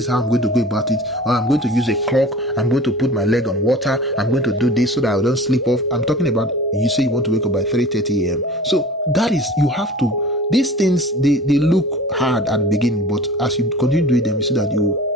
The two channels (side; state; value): both; normal; correlation 0.41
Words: how I'm going to go about it. Or I'm going to use a clock. I'm going to put my leg on water. I'm going to do this so that I don't sleep off. I'm talking about, you say you want to wake up by 3:30 a.m. So that is, you have to, these things, they look hard at the beginning, but as you continue doing them, you see that you